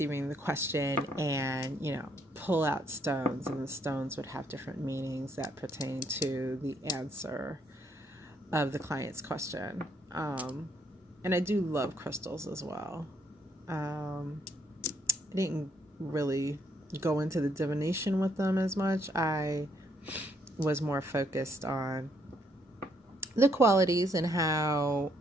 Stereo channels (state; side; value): normal; both; correlation 0.71